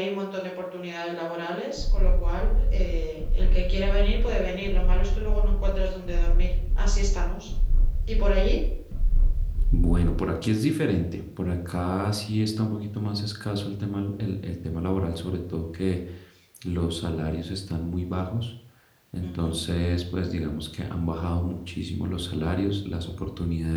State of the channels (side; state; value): both; identical; correlation 1.00